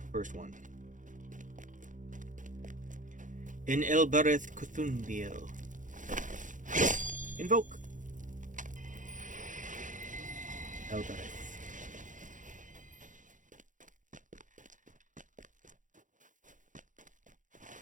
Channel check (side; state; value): left; late; 0.37 ms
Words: First one. In Elbereth Cthulhu. Invoke. Elbereth.